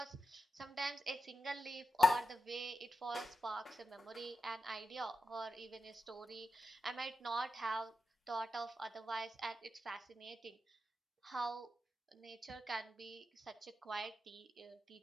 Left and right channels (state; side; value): normal; both; correlation 0.89